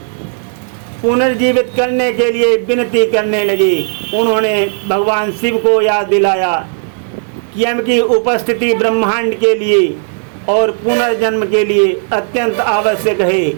पुनर्जीवित करने के लिए विनती करने लगे। उन्होंने भगवान शिव को याद दिलाया कि यम की उपस्थिति ब्रह्मांड के लिए और पुनर्जन्म के लिए अत्यंत आवश्यक है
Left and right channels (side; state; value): left; silent; 63 dB below the other